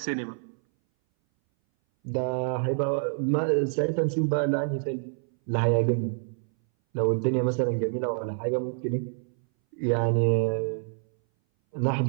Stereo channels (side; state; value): left; silent; 59 dB below the other